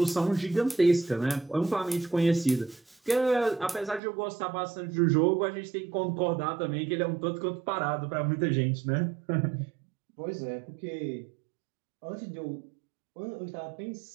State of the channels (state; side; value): drops out; left; at 4.0 s